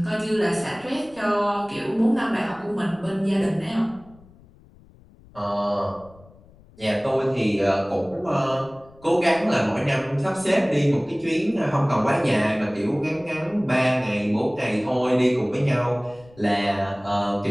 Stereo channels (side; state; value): left; noise; rumble, 26 dB below the sound